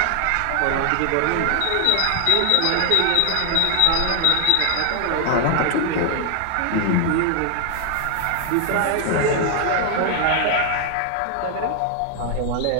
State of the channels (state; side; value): different; both; correlation 0.00